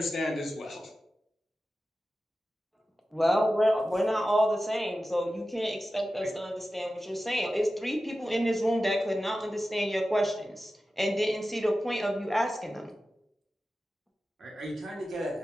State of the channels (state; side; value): normal; both; correlation 0.94